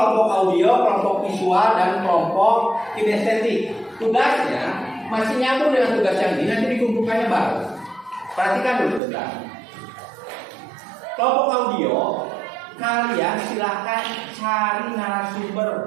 audio, kelompok visual, dan kelompok kinestetik. Tugasnya masih nyambung dengan tugas yang ini. Nanti dikumpulkannya baru. Perhatikan dulu bentar. Kelompok audio. Kalian silahkan cari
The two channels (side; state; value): left; drops out; at 9.0 s